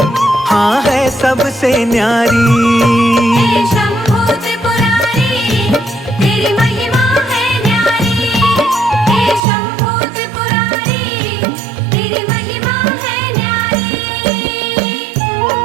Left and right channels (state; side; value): drops out; left; at 9.4 s